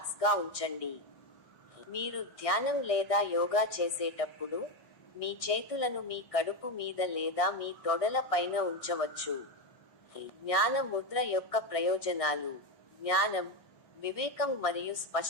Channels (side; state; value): right; late; 1.6 ms